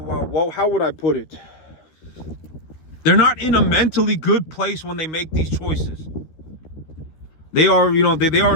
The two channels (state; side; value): late; right; 13 ms